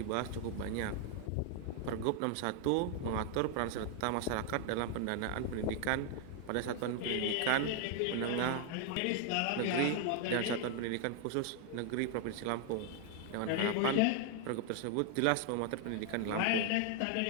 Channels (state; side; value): different; both; correlation 0.00